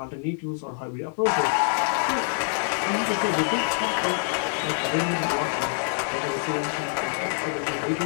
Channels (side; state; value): right; silent; 58 dB below the other